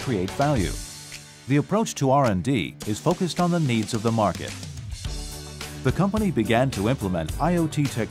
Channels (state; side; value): identical; both; correlation 1.00